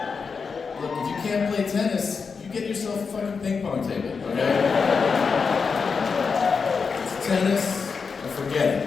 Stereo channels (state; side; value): quieter; right; 5.3 dB